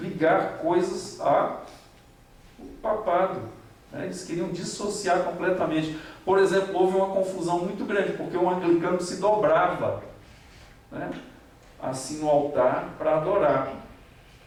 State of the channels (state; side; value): identical; both; correlation 1.00